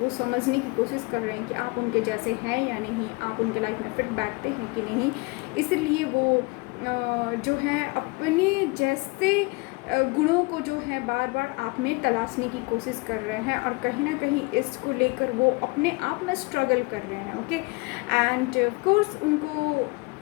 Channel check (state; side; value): quieter; right; 27.1 dB